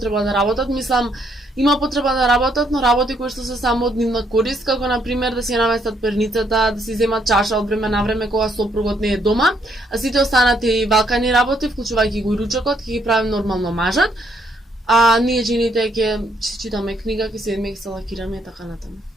да работат. Мислам, има потреба да работат, но работи кои што се само од нивна корист, како на пример да си наместат перницата, да си земат чаша од време на време кога сопругот не е дома, а сите останати валкани работи, вклучувајќи го и ручокот, ќе ги правим нормално мажат. А ние жените ќе читаме книга, ќе седиме, ќе се лакираме и така натаму.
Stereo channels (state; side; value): normal; both; correlation 0.71